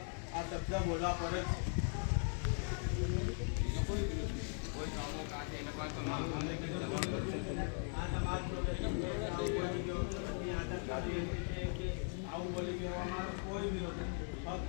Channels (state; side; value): silent; right; 51 dB below the other